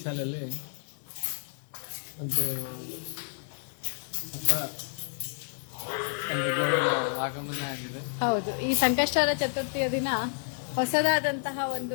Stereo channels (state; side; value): silent; right; digital silence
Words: ಒಂದು ಆಗಮನ ಆಗಿದೆ. ಹೌದು, ಈ ಸಂಕಷ್ಟಹರ ಚತುರ್ಥಿಯ ದಿನ ಹೊಸದಾದಂತಹ